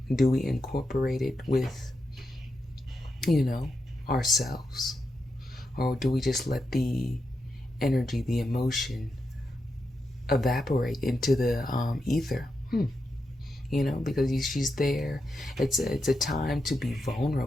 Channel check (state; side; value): normal; both; correlation 0.86